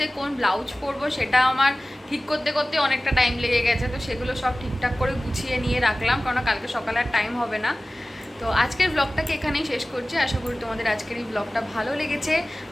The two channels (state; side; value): normal; both; correlation 0.97